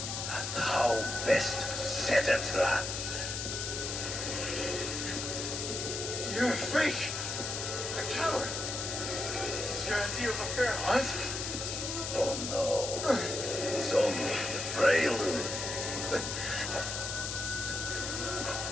And how best to set a trap. You're a fake, a coward. This is your idea of a fair hunt? Oh no, it's only the prelude.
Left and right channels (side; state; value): left; noise; hiss, 3 dB below the sound